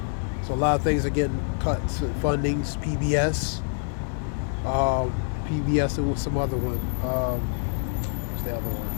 So a lot of things are getting cut. Fundings, PBS, and with some other one. What's the other one?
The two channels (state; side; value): silent; right; digital silence